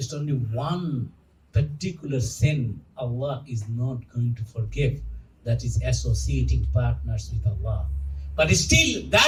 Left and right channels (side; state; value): both; identical; correlation 1.00